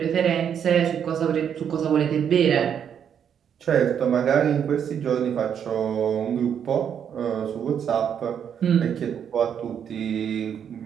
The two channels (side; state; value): left; quieter; 8.3 dB